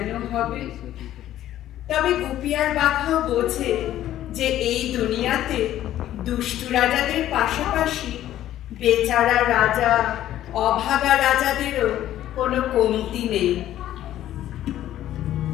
হবে। তবে গুপি আর বাঘাও বোঝে যে এই দুনিয়াতে দুষ্টু রাজাদের পাশাপাশি বেচারা রাজা অভাগা রাজাদেরও কোনো কমতি নেই।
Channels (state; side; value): quieter; right; 12.7 dB